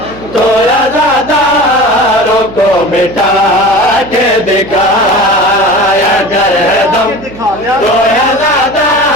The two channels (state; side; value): noise; right; hum, 17 dB below the sound